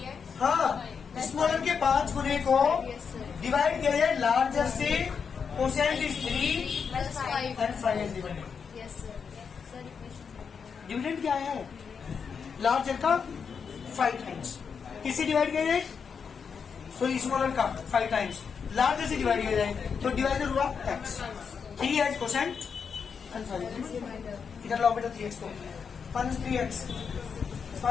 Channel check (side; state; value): right; quieter; 6.3 dB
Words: हाँ, स्मॉलर के 5 गुने को डिवाइड किया जाए लार्जर से, quotient is 3 and 5 is remainder. Dividend क्या है? लार्जर का 5 टाइम्स। किससे डिवाइड किया जाए? सो स्मॉलर का 5 टाइम्स लार्जर से डिवाइड किया जाए तो डिवाइडर हुआ x। 3h quotient and 5 reminder. इधर लाओ बेटा 3x को, minus 3x